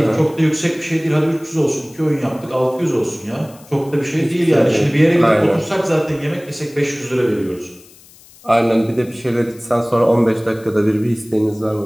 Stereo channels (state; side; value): noise; left; hiss, 24 dB below the sound